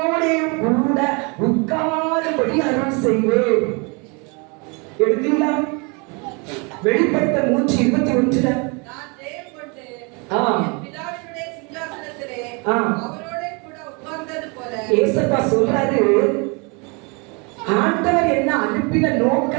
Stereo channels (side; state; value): left; quieter; 31.4 dB